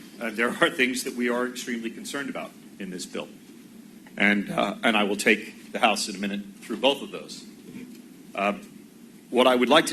and there are things that we are extremely concerned about. in this bill. And I will take the House in a minute through both of those. What I would like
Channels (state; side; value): identical; both; correlation 1.00